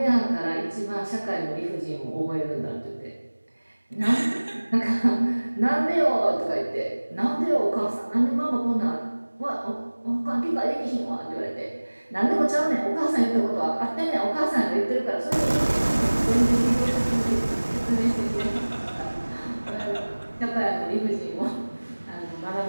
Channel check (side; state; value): both; inverted; correlation -1.00